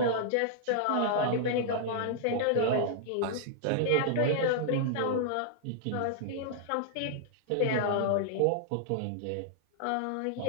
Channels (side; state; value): both; different; correlation -0.01